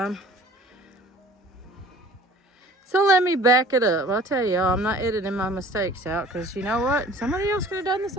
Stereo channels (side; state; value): both; normal; correlation 0.48